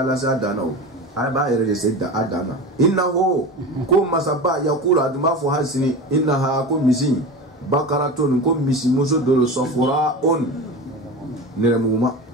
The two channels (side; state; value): both; normal; correlation 0.28